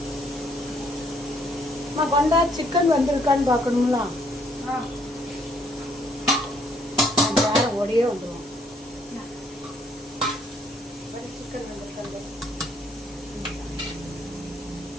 கொண்டா, சிக்கன் வந்திருக்கான்னு பார்க்கணுங்களா? வேற ஓடியே வந்துடும். சிக்கன் வந்திருக்காங்க.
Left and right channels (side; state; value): both; normal; correlation 0.67